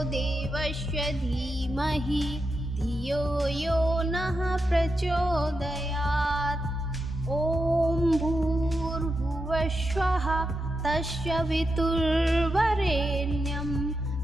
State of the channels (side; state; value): both; normal; correlation 0.87